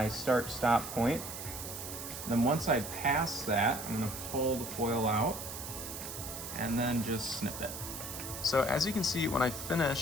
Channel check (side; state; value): right; noise; hiss, 8 dB below the sound